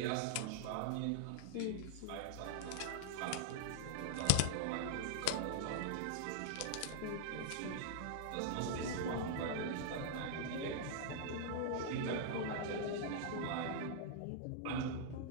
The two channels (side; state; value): both; different; correlation -0.01